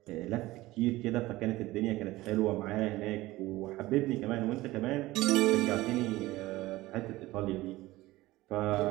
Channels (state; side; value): quieter; left; 18.3 dB